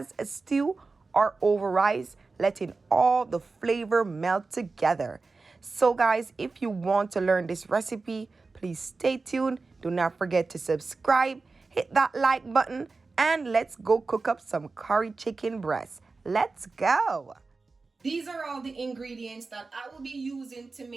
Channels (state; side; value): quieter; left; 4.0 dB